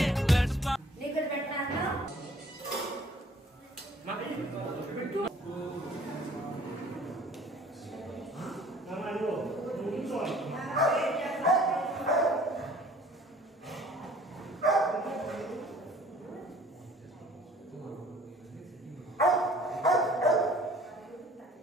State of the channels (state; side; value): normal; both; correlation 0.53